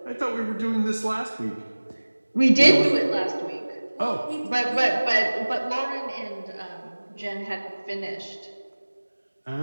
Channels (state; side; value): inverted; both; correlation -1.00